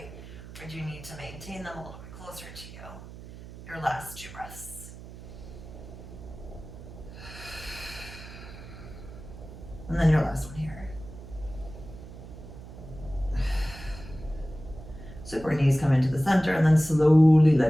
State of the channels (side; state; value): right; noise; hum, 14 dB below the sound